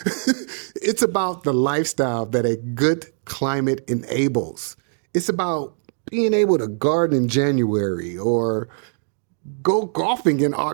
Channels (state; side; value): silent; left; digital silence